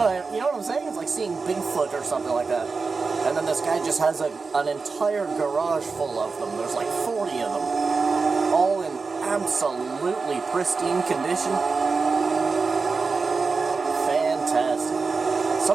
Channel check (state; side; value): quieter; left; 4.5 dB